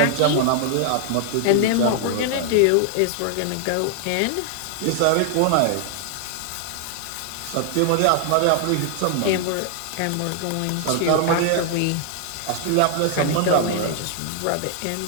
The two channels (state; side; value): different; both; correlation 0.00